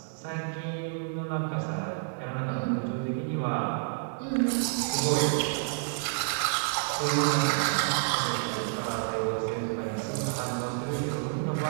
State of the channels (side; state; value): left; silent; digital silence